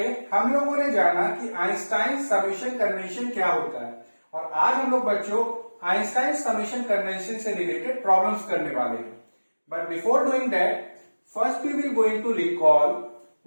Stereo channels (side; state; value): both; inverted; correlation -1.00